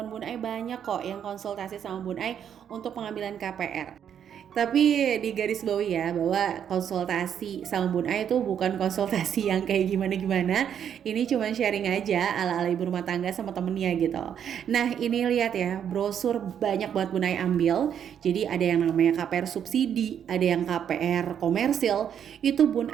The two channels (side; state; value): left; quieter; 8.8 dB